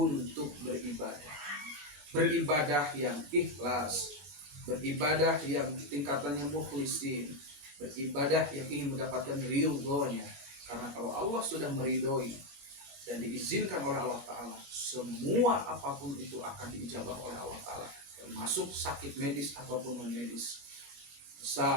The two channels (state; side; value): late; left; 21 ms